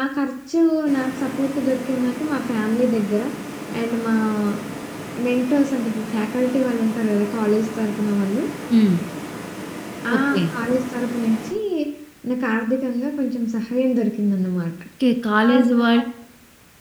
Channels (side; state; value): both; identical; correlation 1.00